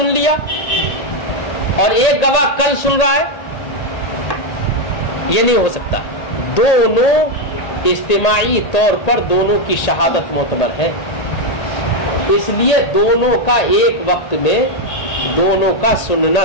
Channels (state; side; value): late; right; 1.8 ms